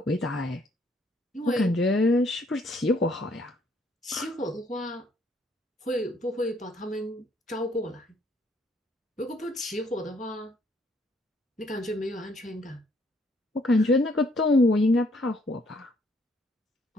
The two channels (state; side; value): normal; both; correlation 0.67